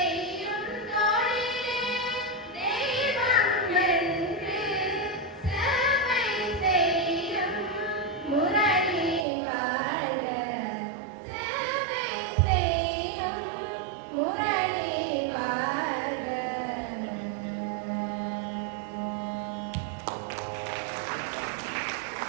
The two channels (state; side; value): drops out; left; at 9.2 s